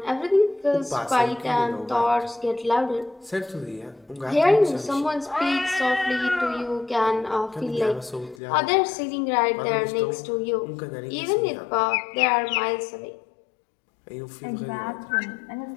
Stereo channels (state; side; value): drops out; right; at 8.3 s